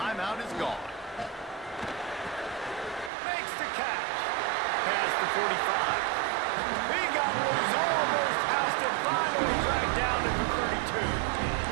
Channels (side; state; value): left; drops out; at 3.1 s